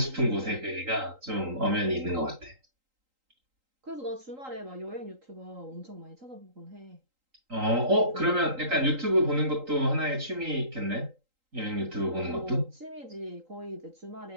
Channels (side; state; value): left; late; 3.8 ms